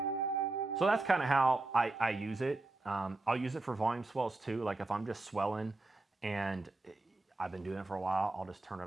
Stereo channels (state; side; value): quieter; left; 3.1 dB